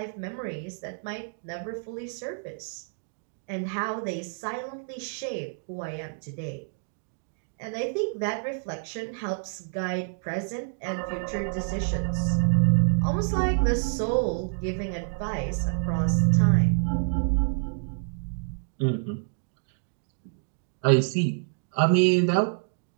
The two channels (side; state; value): left; silent; 59 dB below the other